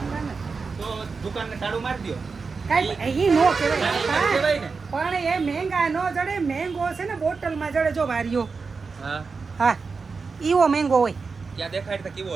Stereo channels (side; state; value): left; quieter; 4.7 dB